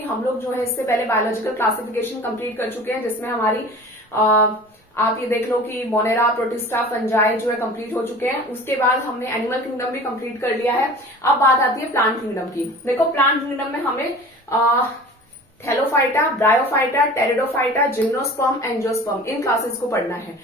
हम लोग जो है इससे पहले बायोलॉजिकल क्लासिफिकेशन कंप्लीट कर चुके हैं, जिसमें हमारी आप ये देख लो कि मोनेरा, प्रोटिस्टा, फंजाई जो है कंप्लीट हो चुके हैं। उसके बाद हमने एनिमल किंगडम भी कंप्लीट कर लिया है। अब बात आती है प्लांट किंगडम की। देखो, प्लांट किंगडम में हमें Thallophyta, Bryophyta, Pteridophyta, gymnosperm, angiosperm इन क्लासेस को पढ़ना है।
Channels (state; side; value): normal; both; correlation 0.41